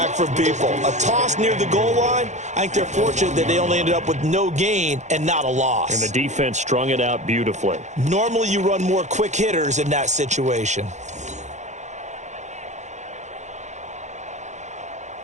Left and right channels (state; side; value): late; left; 0.34 ms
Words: from people. A toss near the goal line, I think they're fortunate that they only ended up with no gain and not a loss. And the defense strung it out beautifully. Normally you run more quick hitters in that situation.